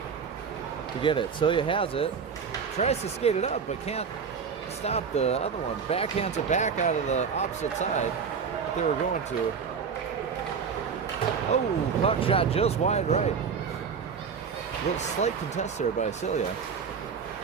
to get it. Celia has it, tries to skate it up, but can't stop the other one. Backhands it back out of the opposite side that they were going to. Oh, puck shot just wide right. A little slight contest there by Celia.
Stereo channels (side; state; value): left; quieter; 6.2 dB